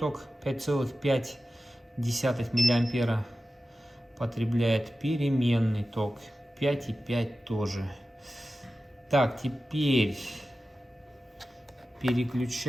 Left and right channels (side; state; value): both; normal; correlation 0.94